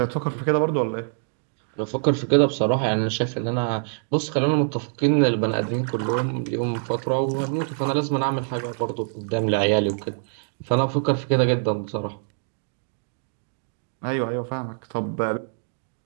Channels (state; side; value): silent; left; digital silence